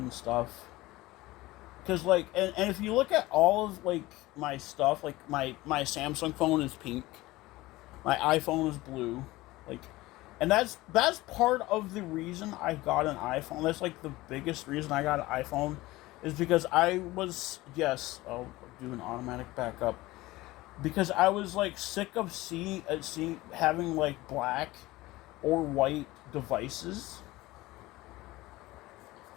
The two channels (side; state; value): right; quieter; 19.0 dB